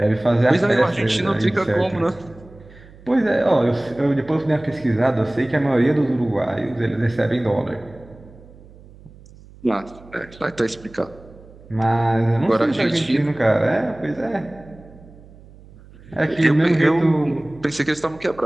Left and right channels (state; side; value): noise; right; hum, 22 dB below the sound